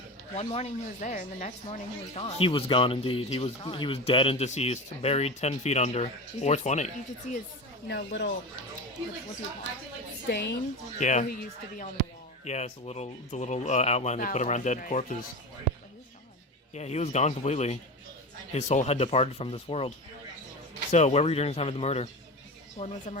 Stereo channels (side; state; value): both; normal; correlation 0.25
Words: one morning he was there, and the next morning he was gone. He was gone indeed. He was dead and deceased, buried 10 feet under, or 20. You could see his, little, stain Yeah. where he used to be on the wall. Yeah, it's the little outline they put around dead corpses. Yeah, he was gone completely. His soul had departed from this world. So, where were you during the time of the murder? When was the